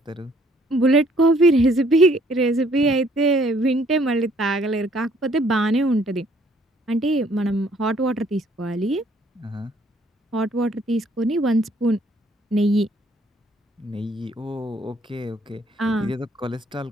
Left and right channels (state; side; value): normal; both; correlation 0.63